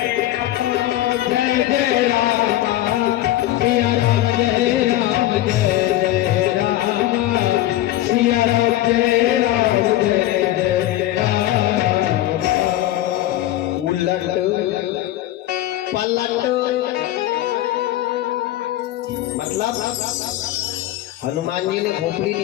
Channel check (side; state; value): right; quieter; 14.6 dB